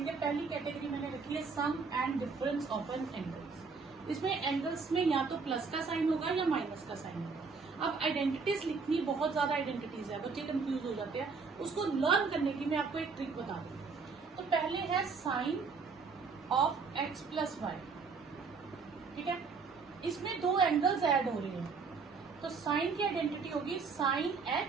पहली कैटेगरी मैंने रखी है sum and difference of n angles. इसमें एंगल्स में या तो प्लस का साइन होगा या माइनस का साइन होगा। अब आइडेंटिटीज लिखनी, बहुत ज्यादा आइडेंटिटीज है, बच्चे कंफ्यूज हो जाते हैं। उसको लर्न करने की मैं आपको एक ट्रिक बता दूं। तो पहले है sine of x plus y. ठीक है, इसमें दो एंगल्स ऐड हो रहे हैं, तो साइन की आइडेंटिटी होगी sine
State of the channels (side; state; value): left; quieter; 4.9 dB